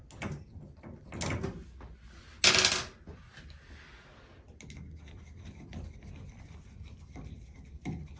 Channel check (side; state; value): both; identical; correlation 1.00